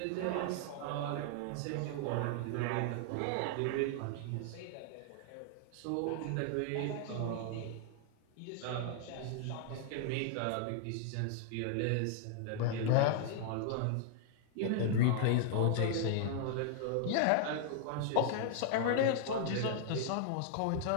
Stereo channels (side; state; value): both; different; correlation -0.01